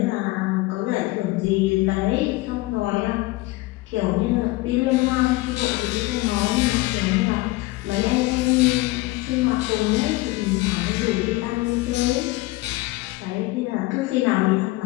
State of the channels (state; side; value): quieter; right; 20.5 dB